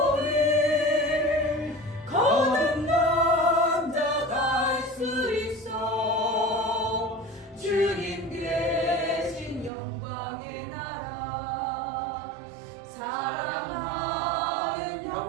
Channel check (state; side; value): drops out; left; at 9.7 s